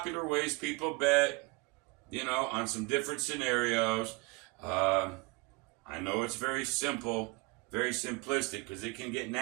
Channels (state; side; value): quieter; left; 27.3 dB